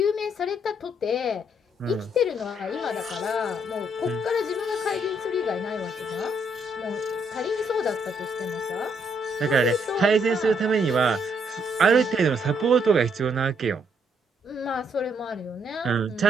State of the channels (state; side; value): normal; both; correlation 0.72